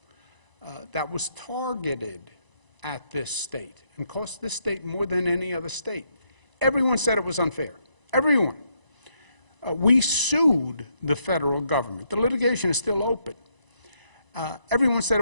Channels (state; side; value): late; left; 1.0 ms